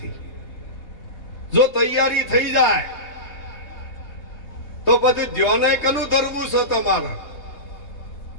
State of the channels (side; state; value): right; late; 3.4 ms